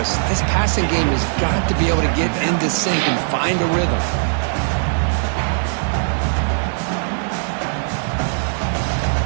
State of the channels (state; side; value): silent; left; digital silence